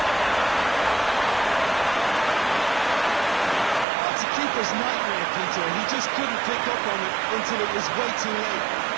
That's a keeper's nightmare, Peter. He just couldn't pick up on it until it was way too late,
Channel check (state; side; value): drops out; left; at 3.9 s